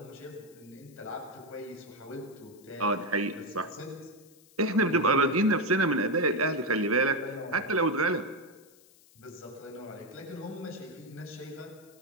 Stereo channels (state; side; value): noise; left; hiss, 27 dB below the sound